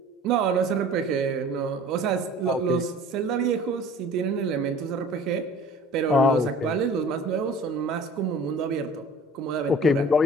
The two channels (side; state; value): both; normal; correlation 0.46